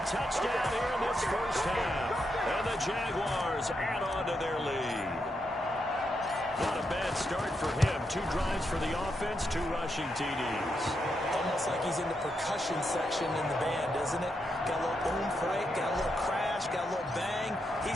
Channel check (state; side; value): normal; both; correlation 0.82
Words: touchdown here in this first half. And the Jaguars add on to their lead. Not a bad start for him. 2 drives for the offense, 2 rushing TDs. Almost like he's in the percussion section in the band, isn't it? Got a little oomph, right? Got a little crash, got a little bang.